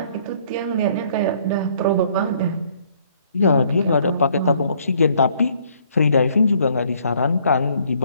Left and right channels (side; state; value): both; inverted; correlation -0.63